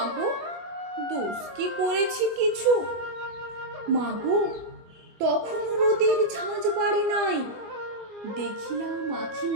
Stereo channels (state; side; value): late; left; 24 ms